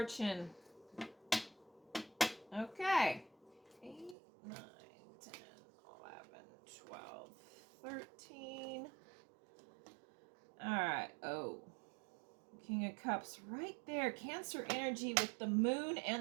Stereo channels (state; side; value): drops out; left; at 4.2 s